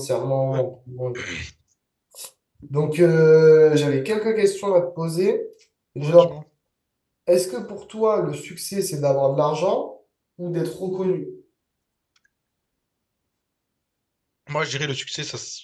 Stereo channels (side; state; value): both; identical; correlation 1.00